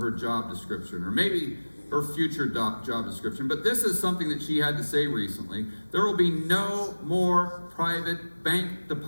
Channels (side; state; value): both; inverted; correlation -1.00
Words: her job description, or maybe her future job description. But this is something that she had to say recently. There will be no more private bank